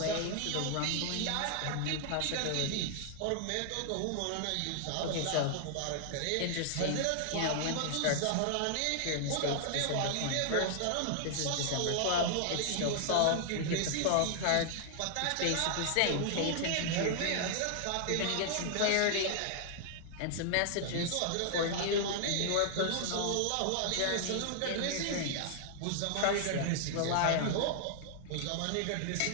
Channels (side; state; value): both; different; correlation 0.00